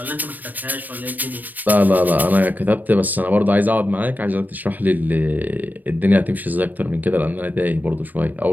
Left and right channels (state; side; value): late; left; 0.087 ms